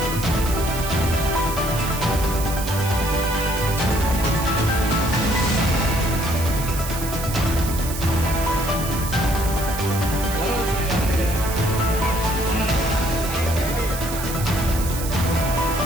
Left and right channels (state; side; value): noise; right; hiss, 9 dB below the sound